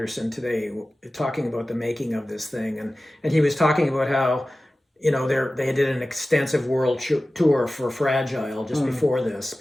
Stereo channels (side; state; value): both; normal; correlation 0.96